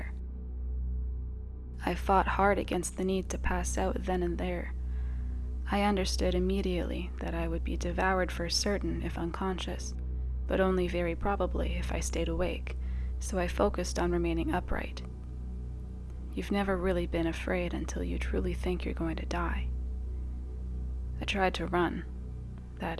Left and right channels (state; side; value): identical; both; correlation 1.00